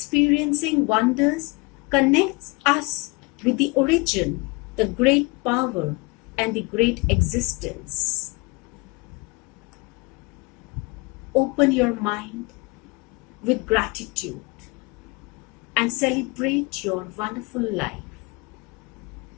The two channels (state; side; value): quieter; right; 27.1 dB